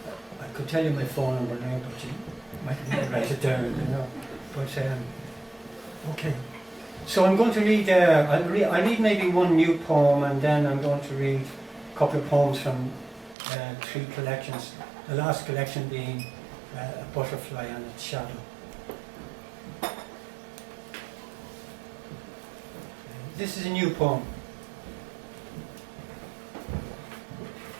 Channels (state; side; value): drops out; left; at 13.4 s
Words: I could tell you my phone number now, but you might need to write it down. But okay. So I'm going to read. I'll read maybe one new poem, and then I'm going to read a couple of poems from 3 collections. The last collection being A Butterfly and Its Shadow. This is a new poem.